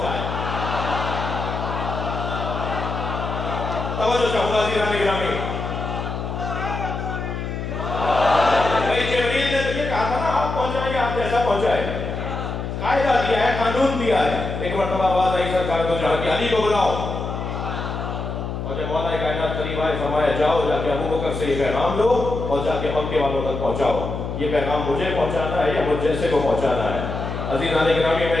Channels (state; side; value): noise; left; hum, 5 dB below the sound